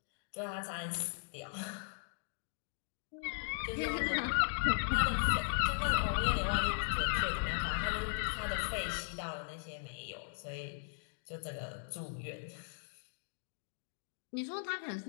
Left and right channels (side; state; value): right; silent; digital silence